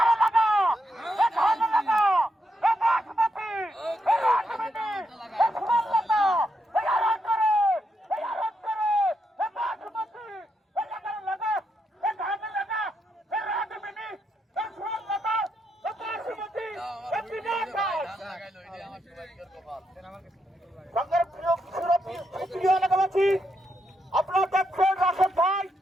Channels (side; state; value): both; normal; correlation 0.81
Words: আপনারা দেখছেন রাশেদ ভাই